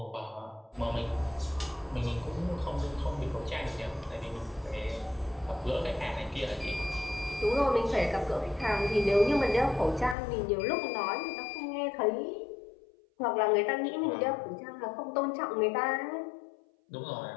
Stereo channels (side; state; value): right; drops out; at 10.2 s